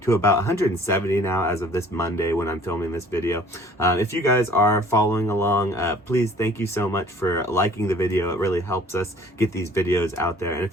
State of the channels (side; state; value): both; normal; correlation 0.52